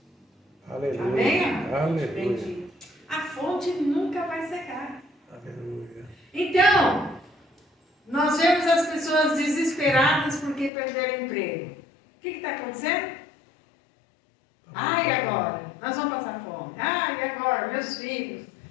Aleluia. Amém? Aleluia. Bendito. A fonte nunca vai secar. Aleluia. Então, nós vemos as pessoas desesperadas porque perderam o emprego. O que está acontecendo? E agora? Nós vamos passar fome. E agora? Meus filhos.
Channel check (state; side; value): drops out; right; at 10.7 s